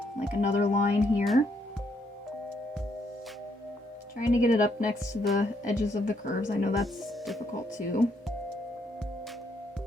like another line here. Trying to get it up next to the edges of the curves. I know that's difficult too.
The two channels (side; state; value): both; normal; correlation 0.73